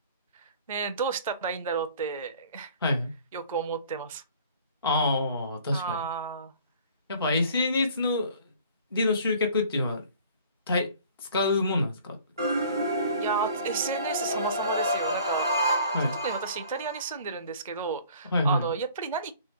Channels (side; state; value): both; inverted; correlation -0.51